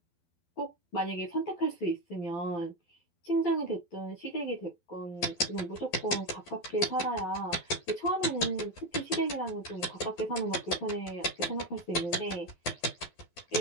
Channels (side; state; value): right; late; 12 ms